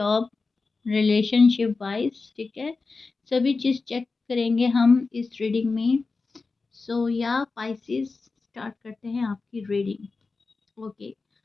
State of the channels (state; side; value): quieter; right; 4.1 dB